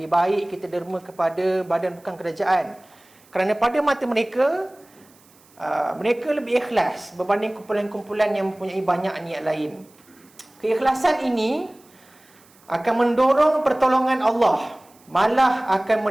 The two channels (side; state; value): right; noise; hiss, 29 dB below the sound